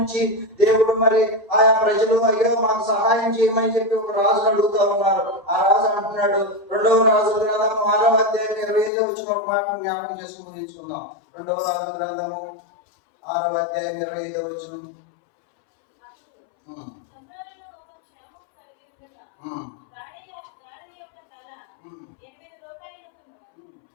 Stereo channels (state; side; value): drops out; right; at 8.9 s